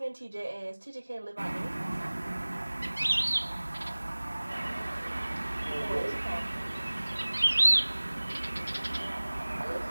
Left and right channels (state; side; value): inverted; both; correlation -1.00